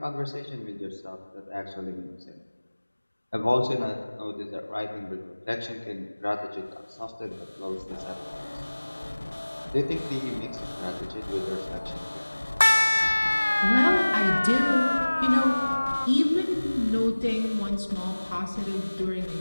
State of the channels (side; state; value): both; inverted; correlation -1.00